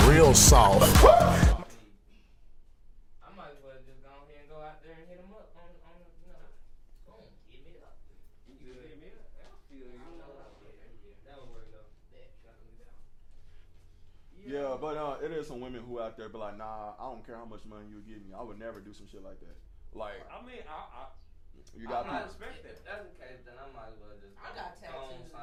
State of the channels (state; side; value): identical; both; correlation 1.00